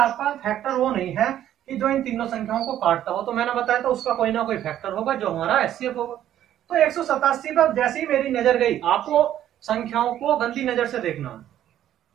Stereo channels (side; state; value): left; quieter; 11.6 dB